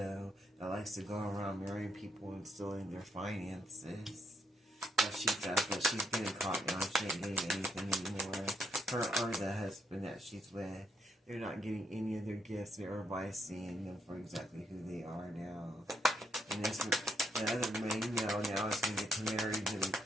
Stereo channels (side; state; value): both; normal; correlation 0.74